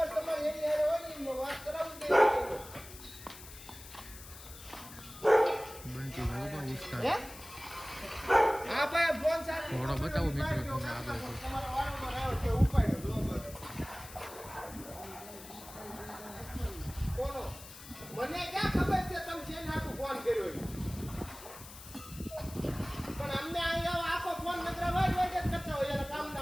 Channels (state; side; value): noise; left; hiss, 16 dB below the sound